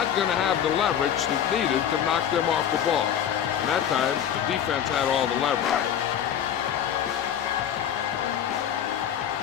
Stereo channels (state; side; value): quieter; right; 9.4 dB